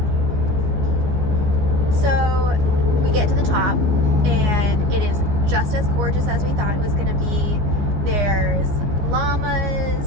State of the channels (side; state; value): left; late; 14 ms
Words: So we get to the top and it is just as gorgeous as we thought it was going to be. There's